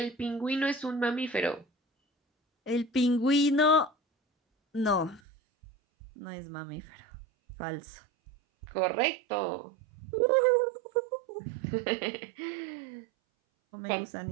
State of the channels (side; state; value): left; drops out; at 5.2 s